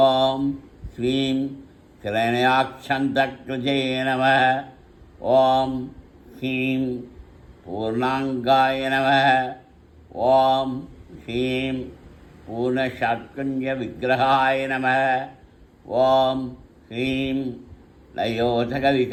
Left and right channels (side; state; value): both; identical; correlation 1.00